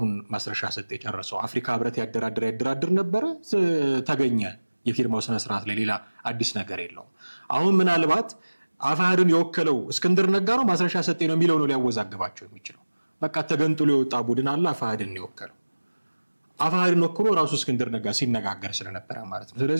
ማስረሻ ሰጤ ጨርሰው አፍሪካ ህብረት ያደራድር ነበረ፣ ተገኘ የፊርማው ስነ ስርዓት ላይ። ሌላ አዲስ ነገር የለውም። አሁን ምናልባት አፋሕድን የወከለው እስክንድር ነጋ ነው ማስረሻ ሰጤ ነው የሚለው ነው ሊያወዛግባቸው የሚችለው። በቃ ተገንጥሎ የወጣ ቡድን አለ አፋሕድን የወከለው። አፋሕድን ወክሎ ራሱ እስክንድር ነጋ ሲነጋገር ስለነበረ ማለት ነው።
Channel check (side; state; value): both; inverted; correlation -1.00